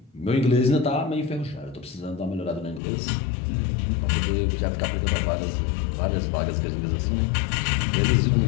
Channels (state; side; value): drops out; right; at 2.8 s